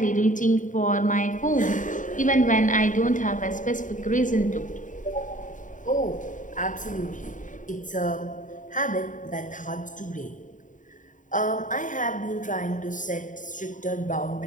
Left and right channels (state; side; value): late; right; 0.37 ms